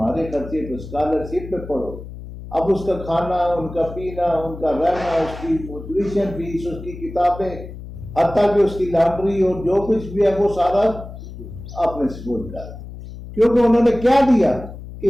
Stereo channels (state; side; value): noise; left; hum, 13 dB below the sound